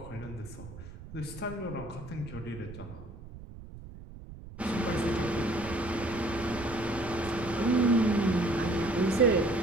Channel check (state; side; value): noise; right; rumble, 14 dB below the sound